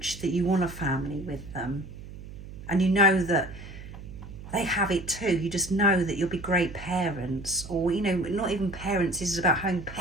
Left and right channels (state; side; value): noise; right; hum, 13 dB below the sound